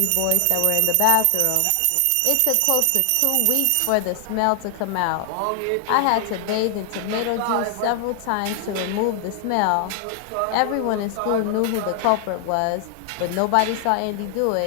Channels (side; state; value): both; different; correlation 0.00